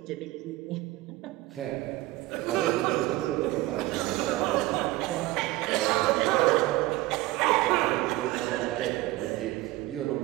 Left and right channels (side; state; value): left; quieter; 18.2 dB